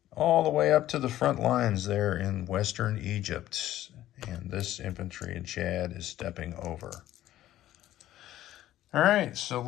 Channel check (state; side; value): quieter; right; 13.6 dB